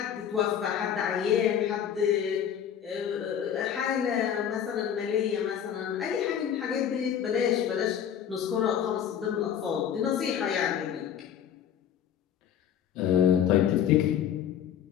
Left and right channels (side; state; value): right; quieter; 9.1 dB